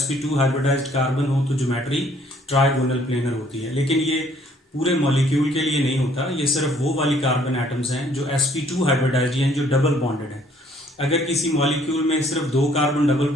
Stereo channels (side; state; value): both; normal; correlation 0.62